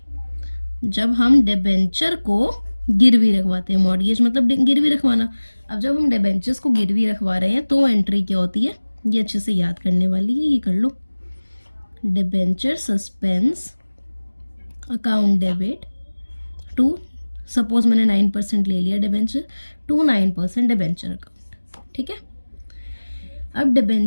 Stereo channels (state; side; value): inverted; both; correlation -1.00